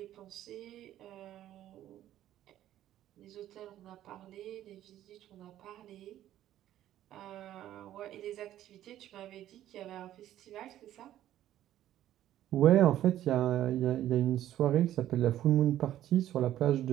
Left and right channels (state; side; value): quieter; left; 12.6 dB